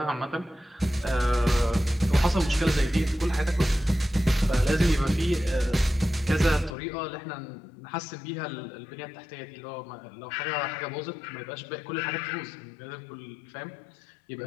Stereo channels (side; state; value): right; drops out; at 6.8 s